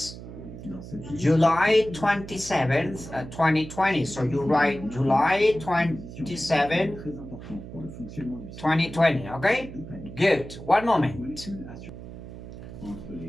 July 27th, 2020. So you write July 27th, 2020. Okay? Good. One moment.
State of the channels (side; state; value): right; noise; hum, 13 dB below the sound